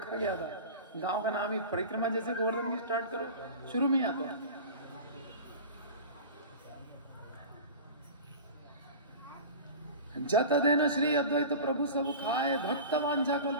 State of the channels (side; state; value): both; inverted; correlation -0.34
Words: गया था। गांव का नाम ही परिक्रमा जैसे गोवर्धन की स्टार्ट करो, शुरू में ही आता है। जत देना श्री अद्वैत प्रभु सब खाए भक्त वांछा